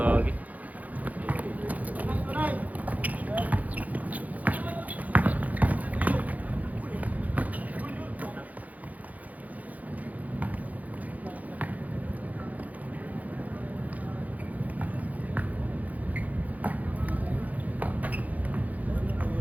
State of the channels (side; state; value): left; late; 0.077 ms